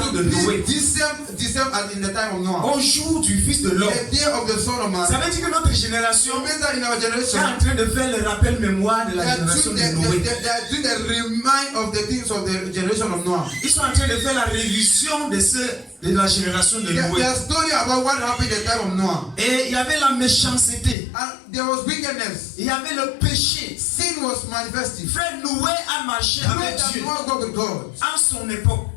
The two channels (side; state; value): right; drops out; at 21.0 s